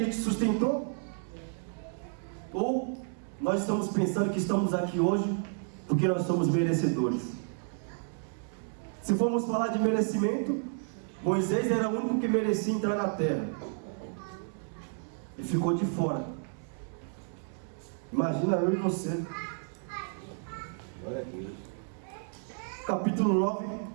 te sustentou? Ou nós estamos pensando que estamos aqui hoje porque nós somos merecedores? Se formos falar de merecimento, Moisés era o único que merecia entrar na terra e ficou de fora. Imagina eu e você. Capítulo 9,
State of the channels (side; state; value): left; silent; 57 dB below the other